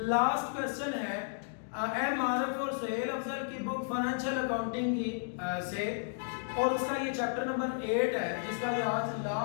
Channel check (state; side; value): silent; right; digital silence